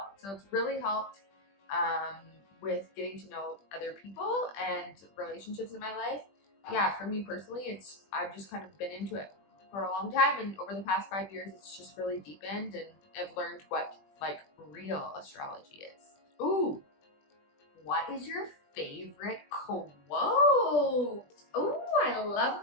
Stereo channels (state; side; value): late; right; 20 ms